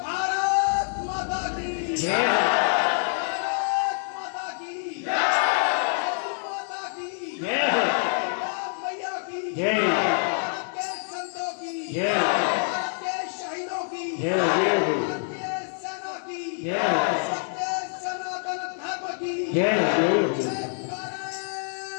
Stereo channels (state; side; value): silent; right; 61 dB below the other